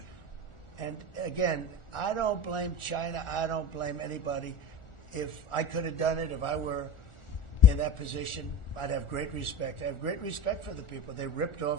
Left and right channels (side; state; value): right; late; 1.4 ms